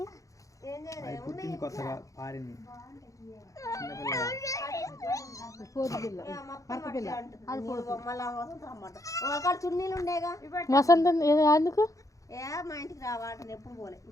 వసంతం ఎందుకు మా ఇంటికి రావాలంటే ఎప్పుడు పోలే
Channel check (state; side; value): late; right; 0.16 ms